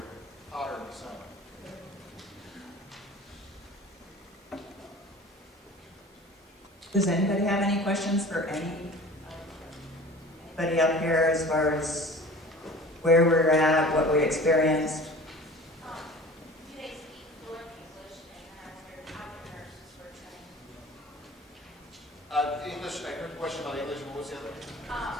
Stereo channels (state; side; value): normal; both; correlation 0.42